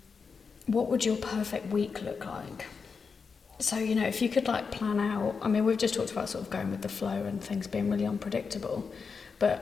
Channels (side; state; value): right; quieter; 5.3 dB